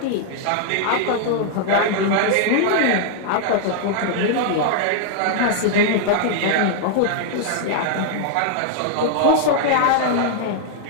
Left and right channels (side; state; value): both; different; correlation 0.00